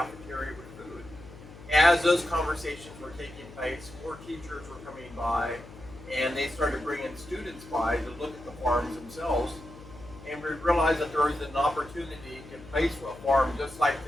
with food. As those conversations were taking place, more teachers were coming by and they started bringing students by to look at the farms themselves. And we realized that there was an opportunity to place a farm just like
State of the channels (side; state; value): left; noise; hum, 17 dB below the sound